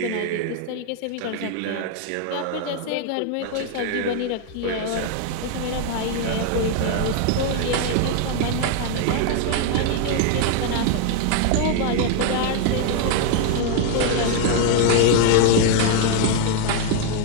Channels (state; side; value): different; both; correlation 0.00